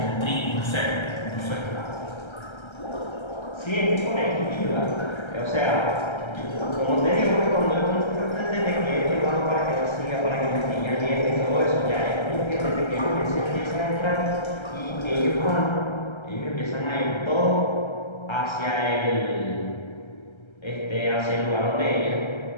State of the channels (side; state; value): right; late; 1.3 ms